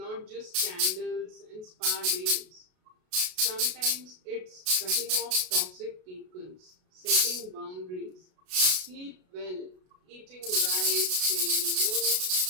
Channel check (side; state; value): left; late; 33 ms